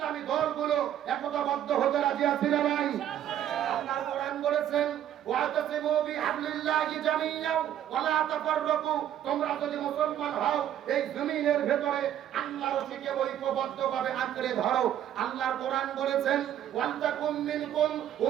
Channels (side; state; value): left; quieter; 10.9 dB